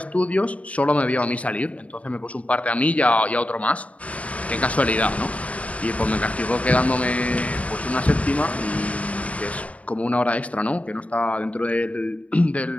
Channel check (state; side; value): late; right; 0.067 ms